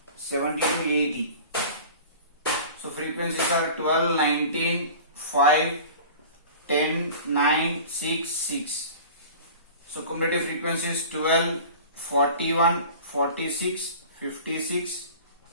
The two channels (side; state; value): both; inverted; correlation -0.40